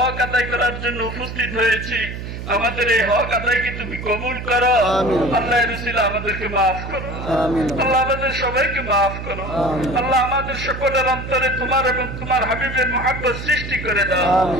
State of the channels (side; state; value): right; noise; hum, 8 dB below the sound